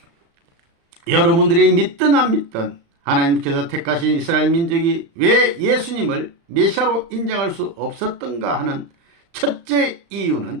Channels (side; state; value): left; late; 35 ms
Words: 여러분들이 믿든 안 믿든 하나님께서 택하신 이스라엘 민족이 왜 예수님을 메시아로 인정할 수 없었던가 하는 첫째